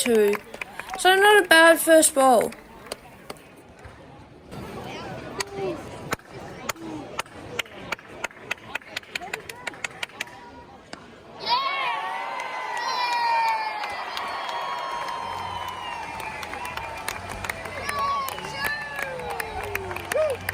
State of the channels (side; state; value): both; identical; correlation 1.00